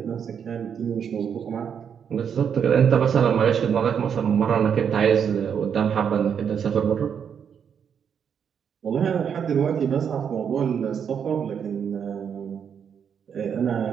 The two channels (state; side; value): quieter; left; 7.6 dB